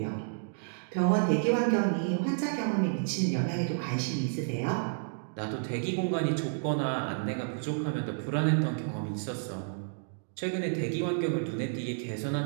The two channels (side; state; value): left; silent; digital silence